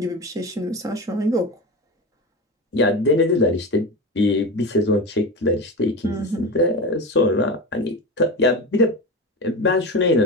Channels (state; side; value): normal; both; correlation 0.24